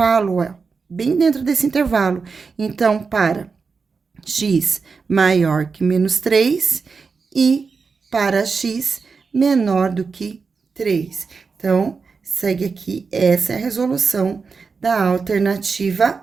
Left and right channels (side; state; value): left; quieter; 4.9 dB